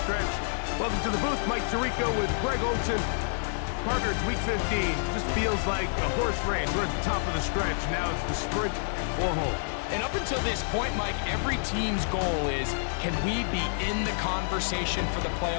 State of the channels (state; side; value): silent; right; 59 dB below the other